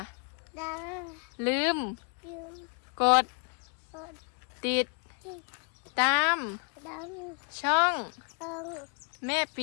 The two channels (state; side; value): quieter; right; 38.9 dB